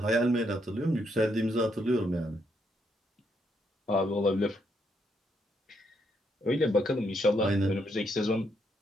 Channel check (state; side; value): normal; both; correlation 0.76